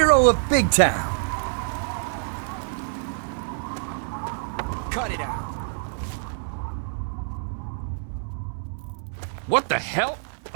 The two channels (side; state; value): left; silent; digital silence